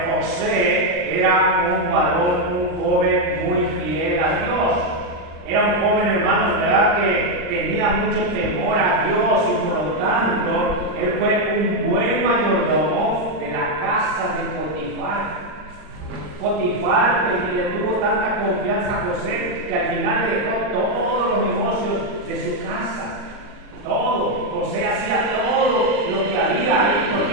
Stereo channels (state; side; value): late; left; 39 ms